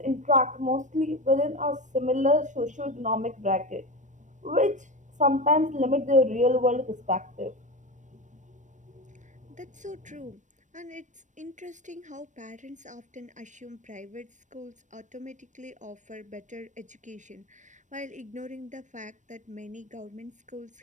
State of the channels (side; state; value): left; late; 0.36 ms